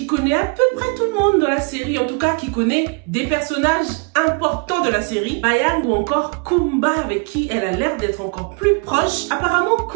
connaît à peu près tout le monde dans la série, en tout cas qui connaît des personnages importants de la série, Bayang ou encore Kumba, avec qui elle a l'air d'être encore plus proche. Apparemment,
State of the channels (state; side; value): quieter; left; 34.4 dB